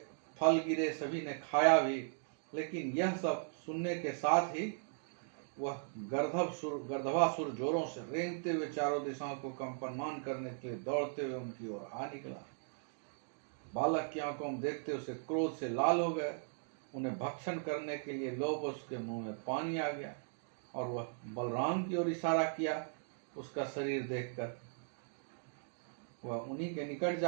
फल गिरे, सभी ने खाया भी। लेकिन यह सब सुनने के साथ ही वह गर्दभासुर जोरों से रेंगते हुए चारों दिशाओं को कंपनमान करने के लिए दौड़ते हुए उनकी ओर आ निकला। बालक की आंखों में देखते उसे क्रोध से लाल हो गए। उन्हें भक्षण करने के लिए लोभ, उसके मुंह में पानी आ गया और वह बलराम की ओर इशारा किया। उसका शरीर देखकर वह उन्हीं के निकट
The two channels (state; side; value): silent; left; digital silence